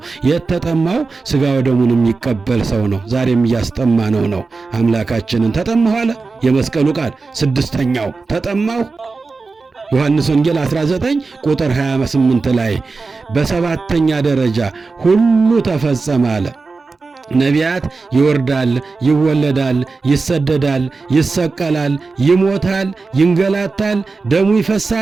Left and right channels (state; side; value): quieter; left; 4.1 dB